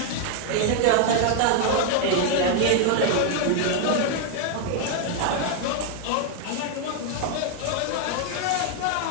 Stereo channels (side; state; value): both; different; correlation 0.00